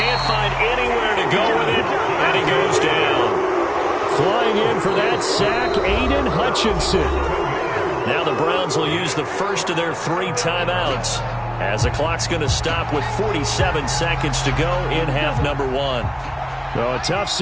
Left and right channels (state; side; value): identical; both; correlation 1.00